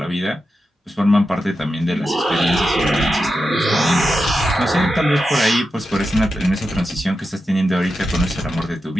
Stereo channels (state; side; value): normal; both; correlation 0.89